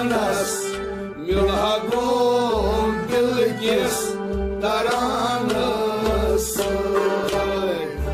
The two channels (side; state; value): both; identical; correlation 1.00